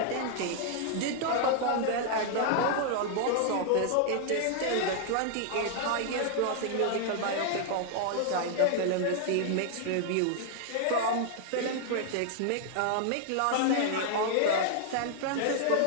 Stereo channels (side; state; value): both; different; correlation 0.00